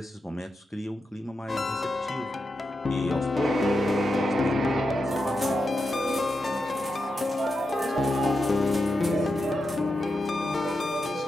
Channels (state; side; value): normal; both; correlation 0.87